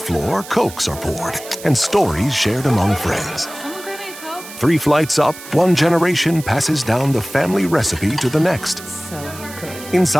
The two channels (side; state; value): right; noise; hiss, 15 dB below the sound